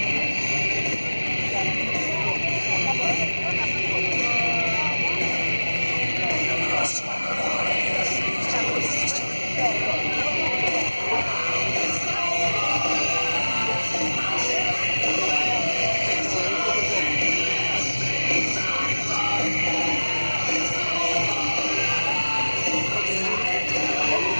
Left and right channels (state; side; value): inverted; both; correlation -1.00